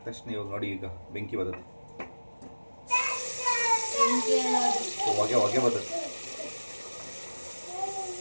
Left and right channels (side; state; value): both; inverted; correlation -1.00